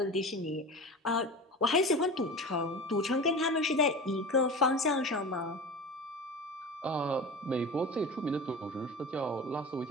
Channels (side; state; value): both; normal; correlation 0.32